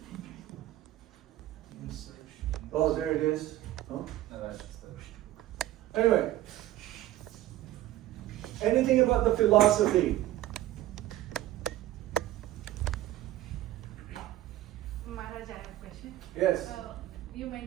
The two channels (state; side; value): quieter; left; 14.4 dB